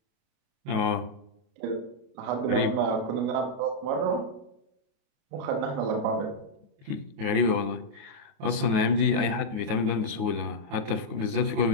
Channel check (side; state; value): left; late; 28 ms